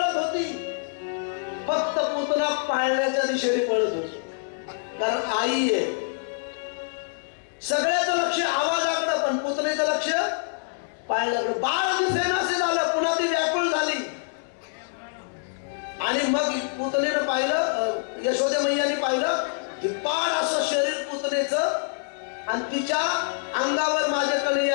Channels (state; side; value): silent; right; 61 dB below the other